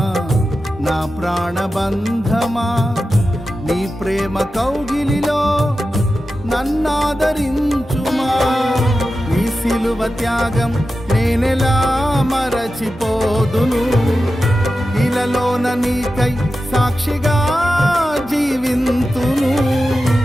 నా ప్రాణబంధమా నీ ప్రేమ కౌగిలిలో నన్నాదరించుమా. నీ సిలువ త్యాగం నేనెలా మరచిపోదును, ఇలలోన నీకై సాక్షిగా జీవింతును.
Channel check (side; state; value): both; normal; correlation 0.92